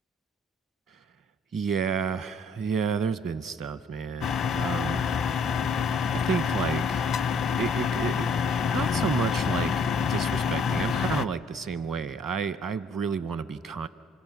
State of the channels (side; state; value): both; normal; correlation 0.61